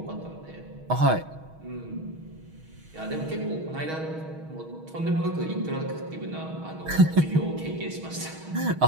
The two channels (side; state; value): left; late; 6.3 ms